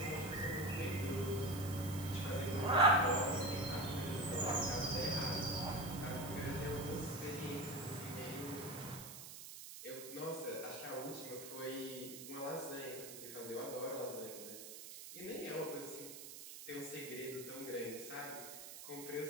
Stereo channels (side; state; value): right; noise; hiss, 11 dB below the sound